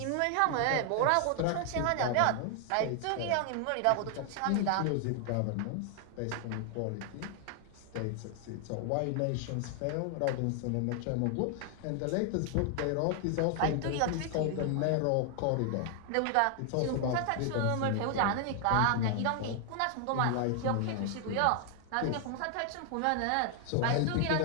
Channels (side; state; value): both; different; correlation 0.00